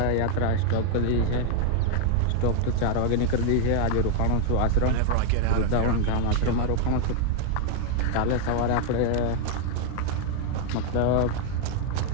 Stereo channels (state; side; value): different; both; correlation 0.00